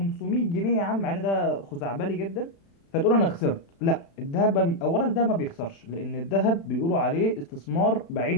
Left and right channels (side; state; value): right; late; 36 ms